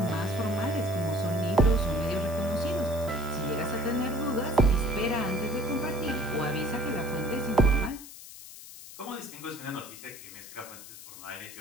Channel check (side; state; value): left; noise; hiss, 15 dB below the sound